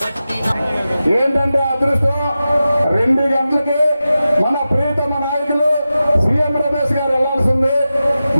పట్టినాడు ఏంటంటే అదృష్టం 2 గంటలకి మన ప్రియతమ నాయకులు సీఎం రమేష్ గారు వెళ్లాల్సింది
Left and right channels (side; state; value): both; inverted; correlation -0.93